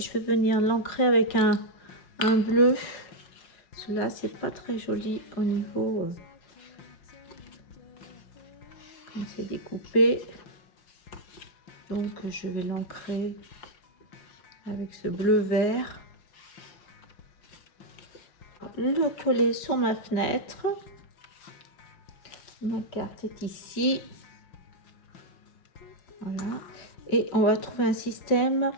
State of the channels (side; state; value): right; late; 5.6 ms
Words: vais venir l'ancrer avec un bleu. Cela c'est pas très joli au niveau quand c'est découpé. Donc je vais l'ancrer avec ce bleu vert. Le coller sur ma fenêtre. Ma carte est ici. Voilà. Et on va trouver un système